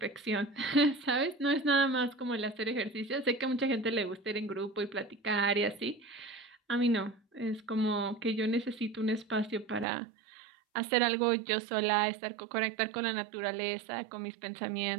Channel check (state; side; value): drops out; left; at 9.9 s